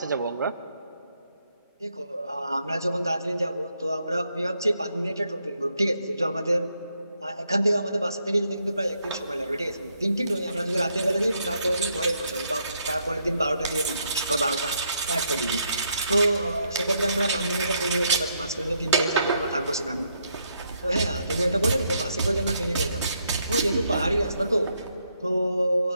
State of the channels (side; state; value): both; inverted; correlation -0.76